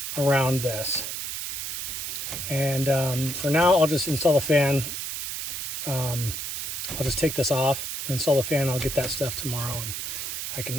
around this. And for now, I'll just install the fan. I'll just take this off and install the fan. I'll get that stuff tomorrow, and I can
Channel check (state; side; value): noise; right; hiss, 4 dB below the sound